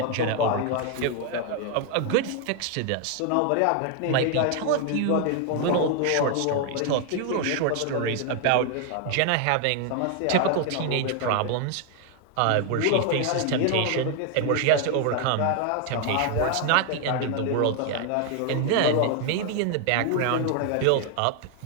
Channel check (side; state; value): both; different; correlation 0.00